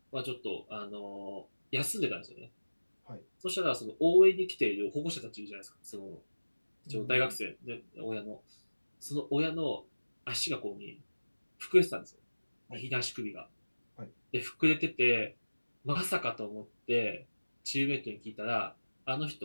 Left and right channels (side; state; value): both; inverted; correlation -1.00